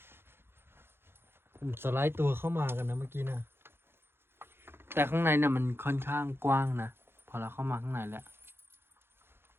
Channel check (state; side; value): late; left; 0.11 ms